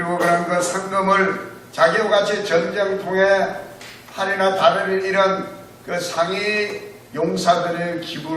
그런 그 상금을 자기와 같이 전쟁통에 팔이나 다리를 잃은 그 상위 용사들을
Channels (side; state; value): both; identical; correlation 1.00